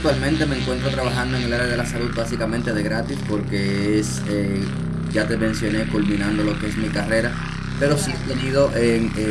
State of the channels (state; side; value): identical; both; correlation 1.00